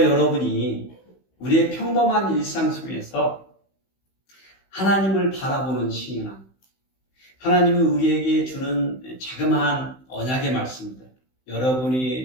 여러분이 우리의 평범한 일상 속에서 하나님을 바라보는 신앙, 하나님이 우리에게 주는 자그마한 언약의 말씀들,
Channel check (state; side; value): late; right; 16 ms